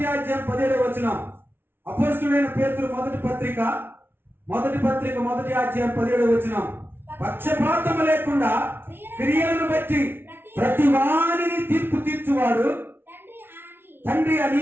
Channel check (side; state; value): left; late; 0.11 ms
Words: అధ్యాయం 17వ వచనం. అపోస్తలుడైన పేతురు మొదటి పత్రిక 1వ అధ్యాయం 17వ వచనం. పక్షపాతము లేకుండా క్రియలను బట్టి ప్రతి వారిని తీర్పు తీర్చువాడు తండ్రి